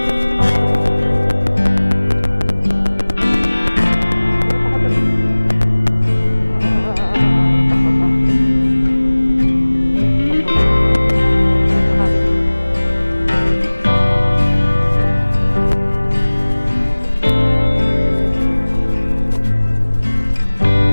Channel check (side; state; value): both; inverted; correlation -1.00